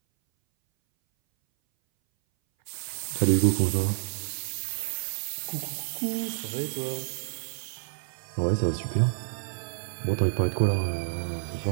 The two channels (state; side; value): silent; left; 59 dB below the other